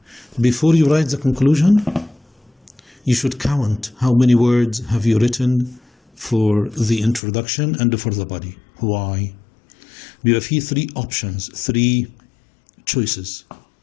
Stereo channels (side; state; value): right; drops out; at 7.2 s